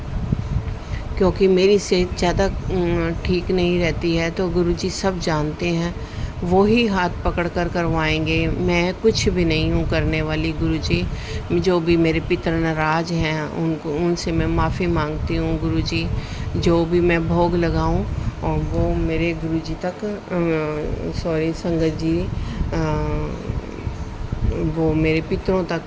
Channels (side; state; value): both; identical; correlation 1.00